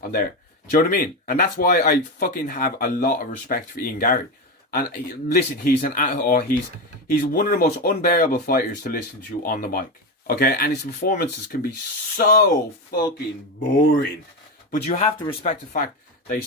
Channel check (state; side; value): normal; both; correlation 0.15